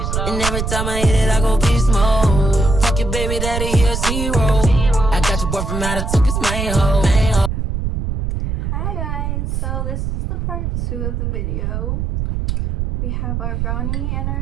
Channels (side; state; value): right; noise; rumble, 2 dB below the sound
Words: And every time I hit it, I go beast mode. Fuck your baby daddy, he a zero. I got your boy from out of took his main hoe. Hi guys, so this is the part 2 of the video. We have our brownie and